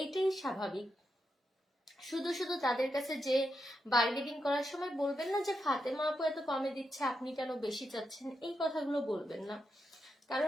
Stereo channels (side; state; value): both; normal; correlation 0.85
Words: এটাই স্বাভাবিক। শুধু শুধু তাদের কাছে যে বার্গেনিং করার সময় বলবেন না যে ফাতেমা আপু এত কমে দিচ্ছে আপনি কেন বেশি চাচ্ছেন, এই কথাগুলো বলবেন না।